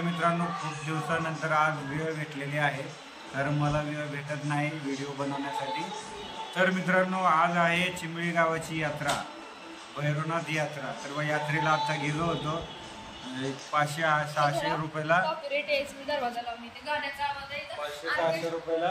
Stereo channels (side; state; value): both; identical; correlation 1.00